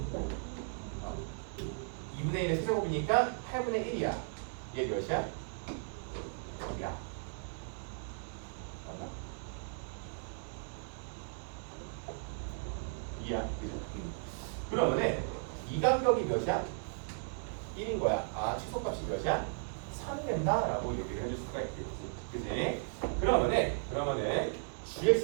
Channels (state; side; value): silent; left; 54 dB below the other